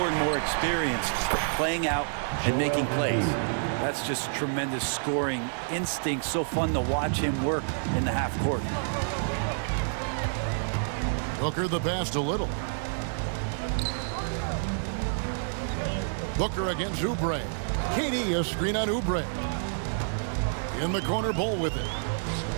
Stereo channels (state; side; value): silent; left; 57 dB below the other